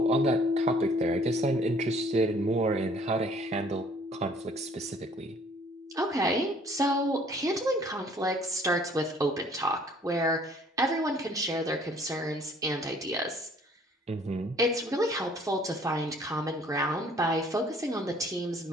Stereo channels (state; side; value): normal; both; correlation 0.57